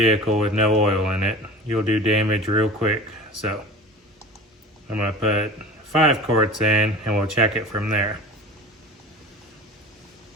with no oil in it. You'll do damage real quick. So I'm gonna put 5 quarts in and we'll check it from there.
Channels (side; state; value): both; normal; correlation 0.37